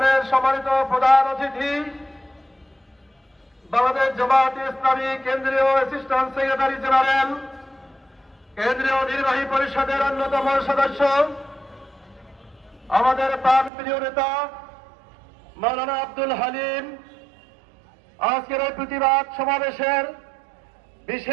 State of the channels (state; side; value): drops out; left; at 13.7 s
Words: সম্মানিত প্রধান অতিথি বাংলাদেশ জামাত ইসলামী কেন্দ্রীয় অ্যাসিস্ট্যান্ট সেক্রেটারি জেনারেল কেন্দ্রীয় নির্বাহী পরিষদের অন্যতম সদস্য আমাদের প্রাণপ্রিয় নেতা মাওলানা আব্দুল হালিম, আজকের এই প্রতিবাদ সমাবেশের